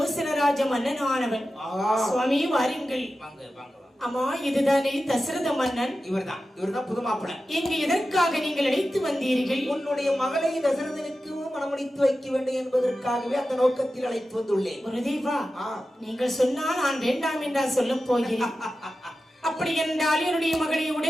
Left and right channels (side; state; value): both; normal; correlation 0.93